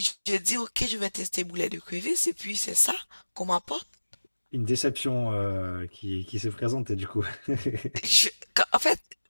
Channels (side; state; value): both; inverted; correlation -1.00